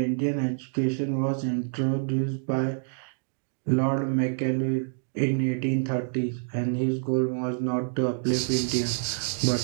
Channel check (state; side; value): silent; left; digital silence